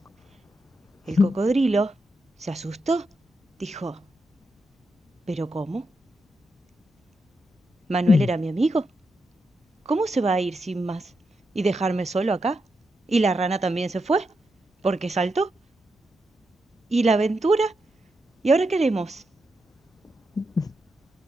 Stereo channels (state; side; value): normal; both; correlation 0.85